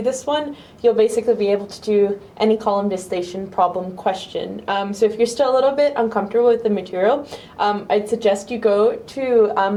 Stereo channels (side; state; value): both; identical; correlation 1.00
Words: this one, you'll basically be able to do any column distillation problem question. So if you're still a little bit uncomfortable with the material, I'd suggest you go to